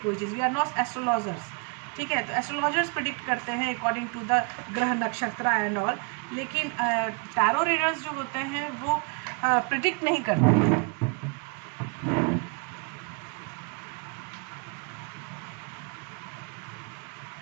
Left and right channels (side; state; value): left; quieter; 33.2 dB